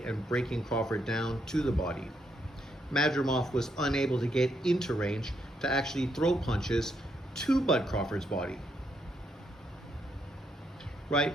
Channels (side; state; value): both; normal; correlation 0.77